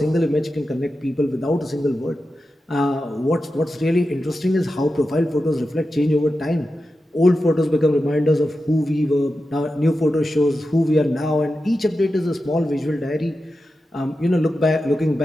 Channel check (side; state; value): both; normal; correlation 0.91